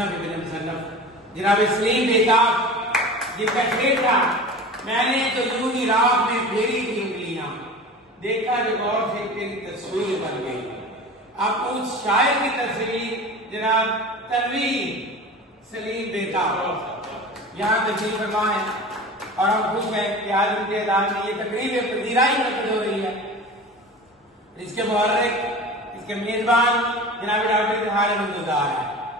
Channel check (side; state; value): both; normal; correlation 0.35